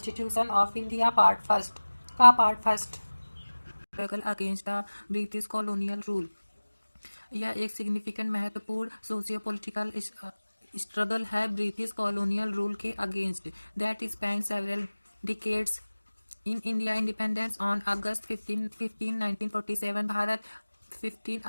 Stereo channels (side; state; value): both; inverted; correlation -1.00